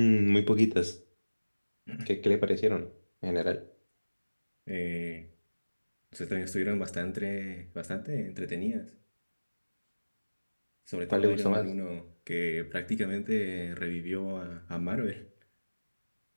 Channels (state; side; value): inverted; both; correlation -1.00